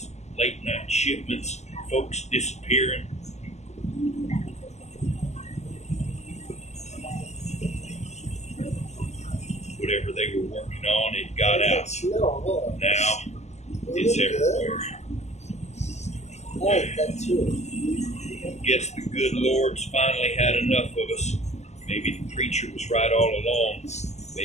late night shipments, folks disappearing. Whatever they were working on, it got out. Now, it's everywhere. Guess the good Lord's finally had enough of us. Maybe the preacher was right all along.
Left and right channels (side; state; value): right; late; 0.33 ms